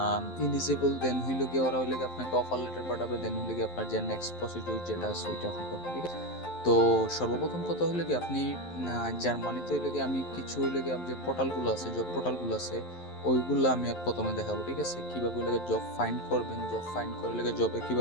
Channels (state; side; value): late; right; 11 ms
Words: ইলিজিবল, দেন হইল গিয়ে ওরা আপনাকে অফার লেটার পাঠাবে, দেন হইল গিয়ে আপনার যে নেক্সট প্রসিডিউর যেটা আছে ওইটা আপনি করবেন, ঠিক আছে? তো সর্বপ্রথম কথা হলো কি আপনি জার্মানিতে আমি কিছু যে পোর্টালগুলো আছে, জব পোর্টালগুলো আছে, ওইগুলো আমি প্রথমে দেখাবো, ঠিক আছে? কিভাবে জব ফাইন্ড করবেন, জব ফাইন্ড করে জবে